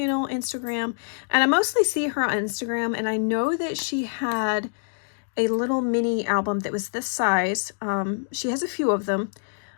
Instagram, and I mostly see her on Instagram, and I know that she had a little mini album that was this size. She has a few of them,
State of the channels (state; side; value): silent; right; digital silence